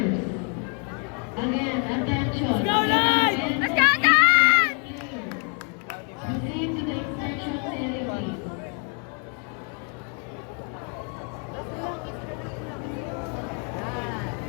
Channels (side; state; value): right; quieter; 37.3 dB